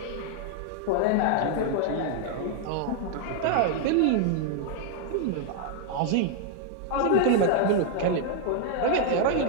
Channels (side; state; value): both; different; correlation 0.00